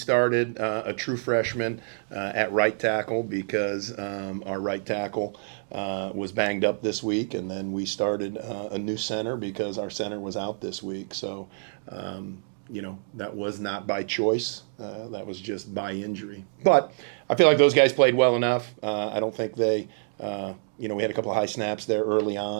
a true freshman at right tackle because our right tackle was banged up this week, and then we started a new center because our center was out this week. So. That was not by choice. That was just by injury. But I feel like those guys played well enough. I don't think they, we had a couple of high snaps there early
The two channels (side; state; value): left; silent; digital silence